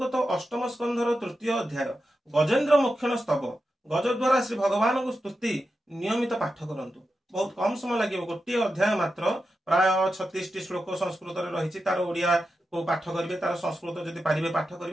अष्टम स्कंधर तृतीय अध्याय गजेन्द्र मोक्षण स्तव गज द्वारा श्री भगवान को स्तुति नियमित पाठ करंतु। बहुत कम समय लगे, गोटे अध्याय मात्र प्राय 36 श्लोक संस्कृत रही, तार ओडिया को पाठ करेंगे, तार संस्कृत जदि पारे पाठ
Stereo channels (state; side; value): normal; both; correlation 0.90